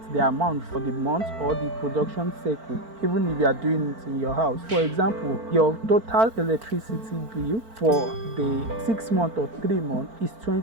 the amount for the month or the production cycle, even if you are doing it in your house. For example, your total electricity bill for the 6 month or 3 month is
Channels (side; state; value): left; late; 4.5 ms